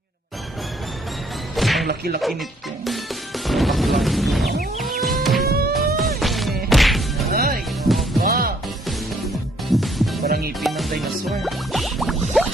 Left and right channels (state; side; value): normal; both; correlation 0.66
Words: Ang laki-laki nito. Ay, ba? Parang ngipin ng dinosaur.